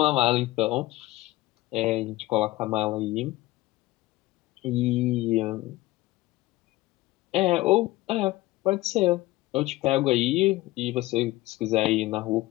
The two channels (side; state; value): right; quieter; 18.4 dB